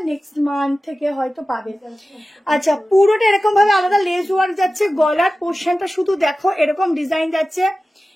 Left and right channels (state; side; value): normal; both; correlation 0.95